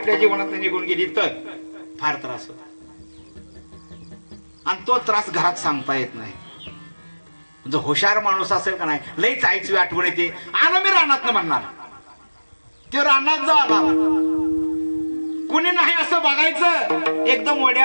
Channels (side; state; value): both; inverted; correlation -1.00